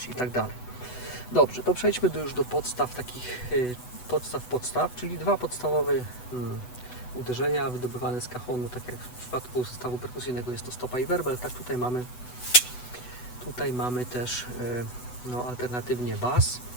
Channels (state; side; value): late; right; 8.0 ms